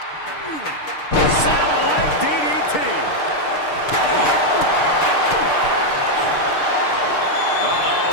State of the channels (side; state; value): right; late; 6.6 ms